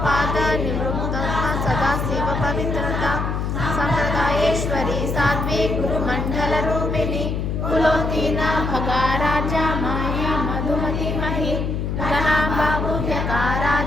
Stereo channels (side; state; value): left; noise; hum, 1 dB below the sound